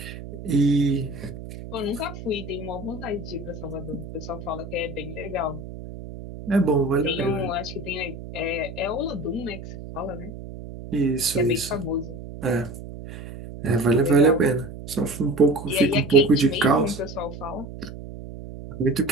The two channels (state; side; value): noise; right; hum, 11 dB below the sound